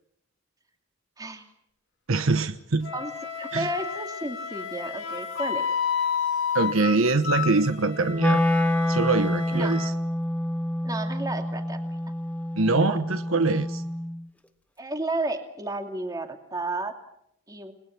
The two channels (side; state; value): both; normal; correlation 0.38